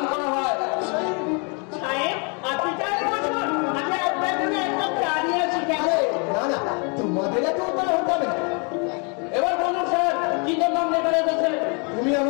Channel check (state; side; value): quieter; right; 35.1 dB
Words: করা হয়। তোমাদের এত উপায় হতে হবে না। এবার বলুন স্যার কি জন্য লেখা রেখেছে? তুমি